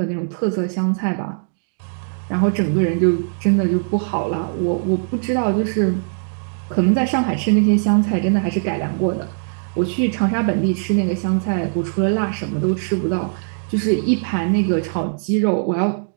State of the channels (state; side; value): silent; left; digital silence